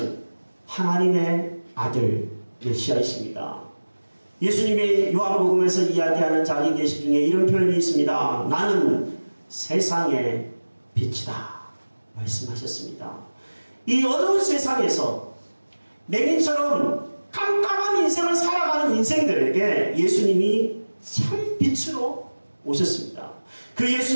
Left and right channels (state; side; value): inverted; both; correlation -1.00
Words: 하나님의 아들 메시아이십니다. 예수님의 요한복음에서 이야기하는 자기 계시 중에 이런 표현이 있습니다. 나는 세상의 빛이다 말씀하셨습니다. 이 어두운 세상에서 맹인처럼 깜깜한 인생을 살아가는 인생들에게 예수님이 참 빛으로 오셨습니다. 그